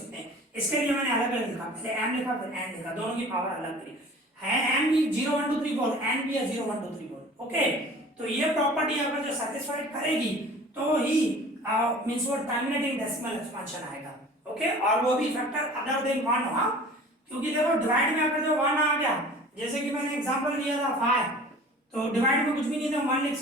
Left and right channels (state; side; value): normal; both; correlation 0.44